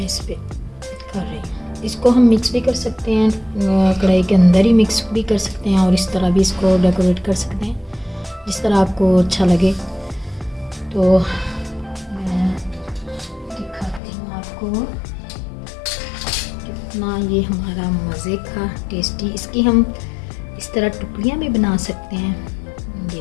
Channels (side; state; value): right; drops out; at 14.0 s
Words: इस पे कर रही हूँ। इसको हम मिक्स भी कर सकते हैं, कढ़ाई के अंदर ही मिक्स भी कर सकते हैं और इस तरह भी इसको डेकोरेट कर सकते हैं, जिस तरह आपको अच्छा लगे। तो मैं दिखाती हूँ आपको कितना ये हमारा मज़े का टेस्टी। इसकी हम इस तरह टुकड़ियाँ भी बना सकते हैं, ये